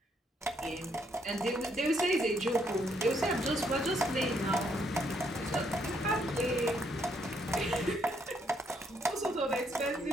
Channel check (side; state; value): both; normal; correlation 0.72